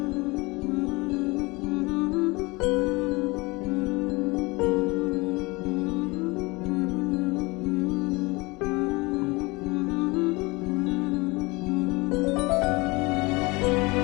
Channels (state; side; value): quieter; right; 24.5 dB